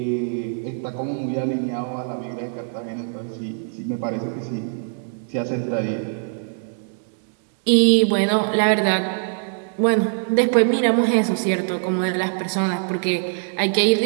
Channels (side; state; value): left; silent; digital silence